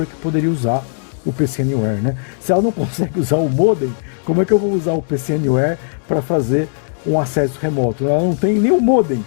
que poderia usar o PC Anywhere, né? Se ela não consegue usar o modem, como é que eu vou usar o PC Anywhere para fazer um acesso remoto? Ela não tem nenhum modem.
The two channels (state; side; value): silent; right; digital silence